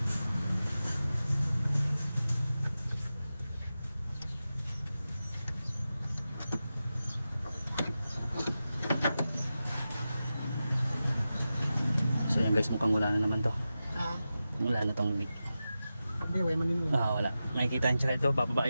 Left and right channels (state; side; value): inverted; both; correlation -0.93